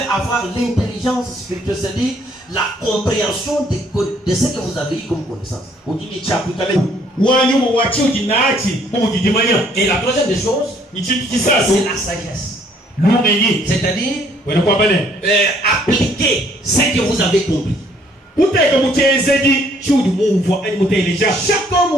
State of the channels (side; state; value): both; normal; correlation 0.63